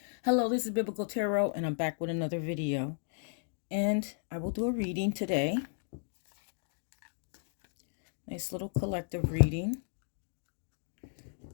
Hello, this is Biblical Tarot, and I'm back with another video. And I will do a reading today. Nice little collective reading.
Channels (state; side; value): silent; right; digital silence